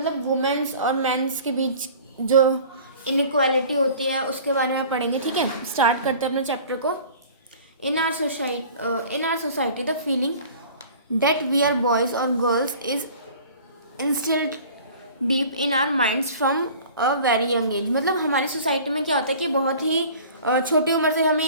वुमेन्स और मेंस के बीच जो इनइक्वालिटी होती है उसके बारे में पढ़ेंगे. ठीक है, स्टार्ट करते हैं अपने चैप्टर को. In our society the feeling that we are boys और girls is instilled deep in our minds from a very young age. मतलब हमारी सोसाइटी में क्या होता है कि बहुत ही छोटी उम्र से हमें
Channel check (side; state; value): both; inverted; correlation -0.45